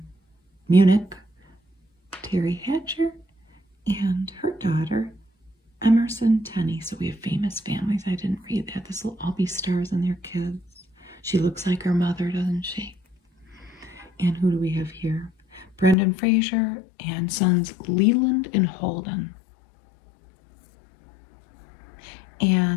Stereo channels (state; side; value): drops out; right; at 16.0 s